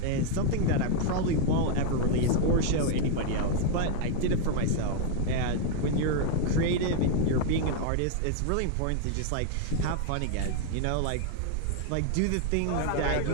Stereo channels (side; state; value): both; different; correlation 0.00